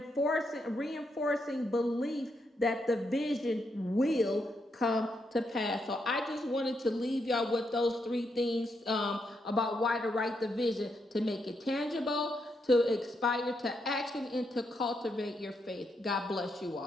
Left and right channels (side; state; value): both; normal; correlation 0.80